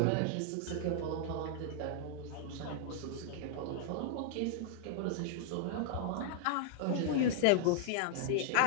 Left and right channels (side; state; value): both; different; correlation -0.01